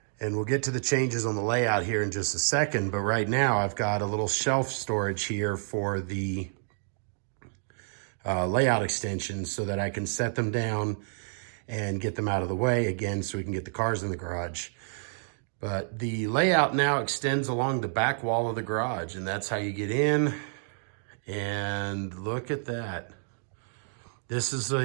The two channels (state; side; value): silent; left; digital silence